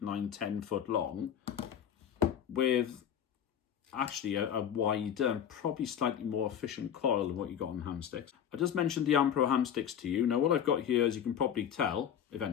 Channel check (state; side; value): quieter; right; 9.1 dB